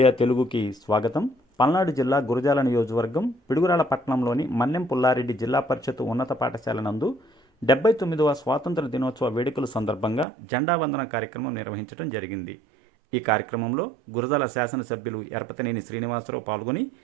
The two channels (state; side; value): drops out; left; at 10.2 s